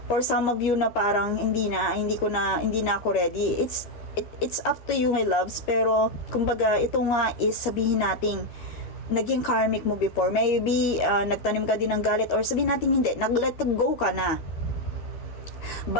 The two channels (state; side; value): late; right; 13 ms